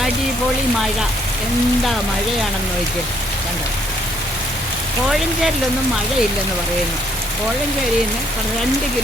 അടിപൊളി മഴ. എന്താ മഴയാണെന്ന് നോക്കി കണ്ടോ. കോഴഞ്ചേരിലൊന്നും മഴയില്ലെന്ന് പറയുന്നു. കോഴഞ്ചേരിയിൽ നിന്ന് 2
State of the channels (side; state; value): both; normal; correlation 0.67